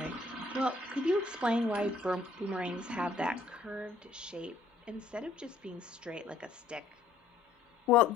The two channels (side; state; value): right; quieter; 3.7 dB